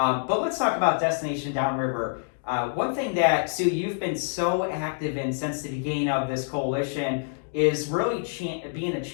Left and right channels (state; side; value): silent; right; digital silence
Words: let's talk about Destination Downriver. One thing that, Sue, you've been so active in since the beginning of this coalition is really being a